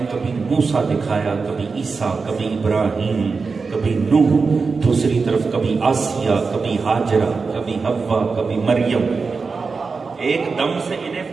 کبھی موسیٰ دکھایا، کبھی عیسیٰ، کبھی ابراہیم، کبھی نوح، دوسری طرف کبھی آسیہ، کبھی ہاجرہ، کبھی حوا، کبھی مریم۔ ایک دم سے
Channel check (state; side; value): quieter; left; 4.6 dB